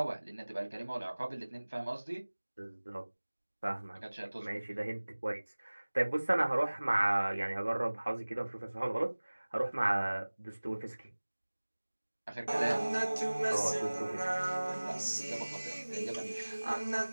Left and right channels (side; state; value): both; inverted; correlation -1.00